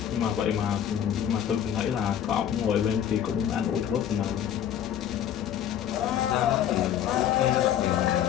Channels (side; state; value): right; quieter; 9.9 dB